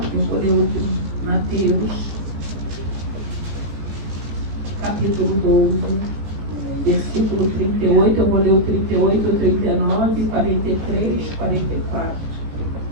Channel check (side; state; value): left; late; 18 ms